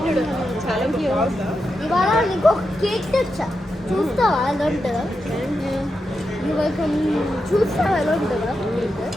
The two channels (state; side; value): normal; both; correlation 0.87